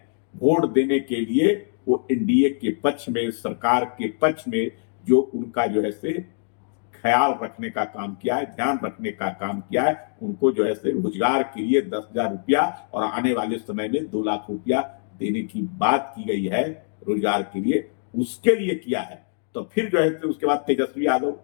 वोट देने के लिए। वो एनडीए के पक्ष में, सरकार के पक्ष में जो उनका जो है से ख्याल रखने का काम किया है, ध्यान रखने का काम किया है। उनको जो है से रोजगार के लिए 10,000 रुपया और आने वाले समय में 2 लाख रुपया देने की बात की गई है रोजगार के लिए, उसके लिए किया है। तो फिर जो है उसके बाद तेजस्वी यादव,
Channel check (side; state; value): right; silent; digital silence